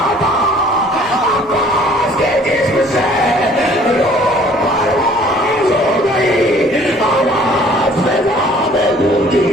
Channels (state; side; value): normal; both; correlation 0.55